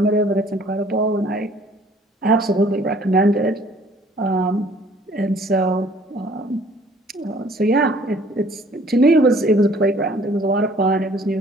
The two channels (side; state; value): both; normal; correlation 0.56